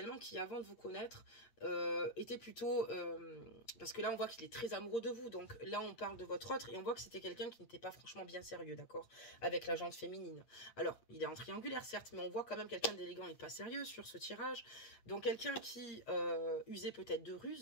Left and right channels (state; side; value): late; right; 8.5 ms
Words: qui, avant de vous connaître, était plutôt... parce que là, on voit qu'il est très amoureux de vous. Donc là, on parle de votre autre et on voit que c'était quelqu'un qui n'était pas franchement bien sérieux, d'accord? Avec la jante féminine. Alors, il est en triangulaire, certes, mais on voit quand même quelqu'un d'élégant et pas sérieux sur ce tirage. Donc quelqu'un qui usait peut-être de